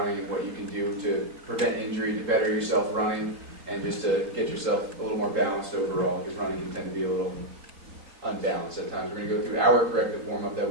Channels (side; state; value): left; late; 3.7 ms